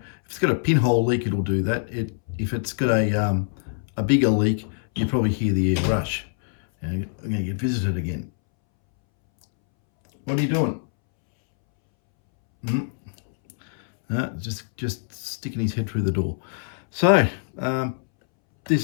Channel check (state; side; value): silent; right; 63 dB below the other